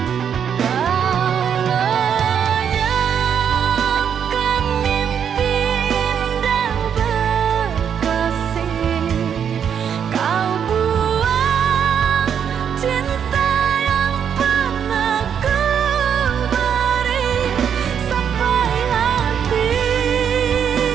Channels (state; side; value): quieter; left; 8.0 dB